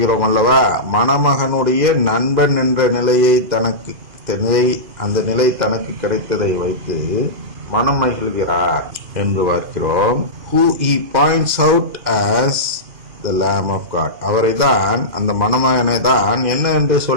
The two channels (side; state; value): left; late; 2.5 ms